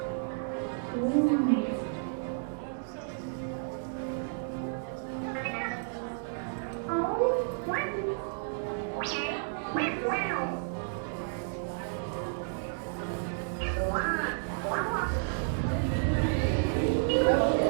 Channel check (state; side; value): silent; left; digital silence